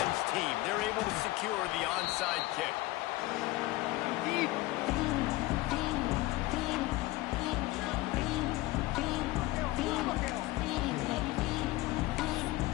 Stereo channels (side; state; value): right; quieter; 19.0 dB